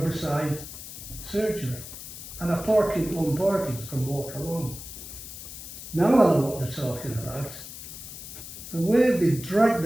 surgery. And I park in one parking, so I can walk along. Now I know what they're talking about. The way they drag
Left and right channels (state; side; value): noise; left; hiss, 12 dB below the sound